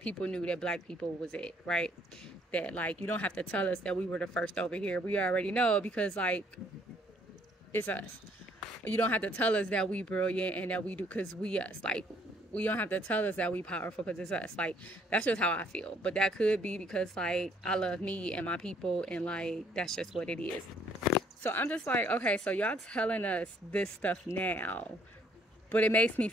knew that black people was it, right? That, like, you don't have to tell us that we were the first over here. We already know because, like, it's us. You don't have to tell us that we brilliant and that we do because we us. Like, we don't have to tell us that we powerful because it's us. Like, that's just how I feel. But that could be because, like, I love me and my people, and, like, that's just what it is. So I'm just like, okay, so y'all telling us this stuff now, but it makes me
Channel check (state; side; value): normal; both; correlation 0.64